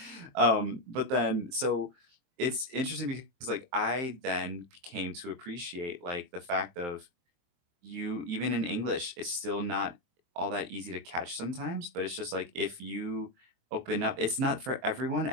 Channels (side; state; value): left; late; 23 ms